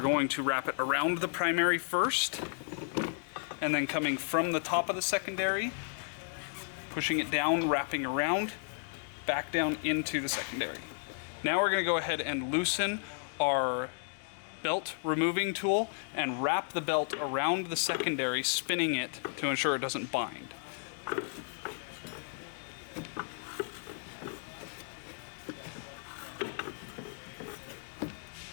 to wrap it around the primary first, and then coming from the top of the secondary, pushing it down, wrapping around, back down into the secondary. Now we're going to go ahead and loosen our belt removing tool and wrap the belt around the secondary, spinning it to ensure it doesn't bind.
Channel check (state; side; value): silent; right; digital silence